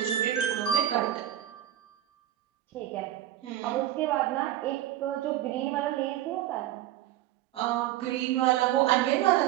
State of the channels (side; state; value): left; quieter; 13.0 dB